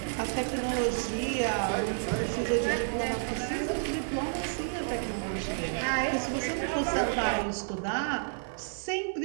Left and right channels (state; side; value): silent; left; digital silence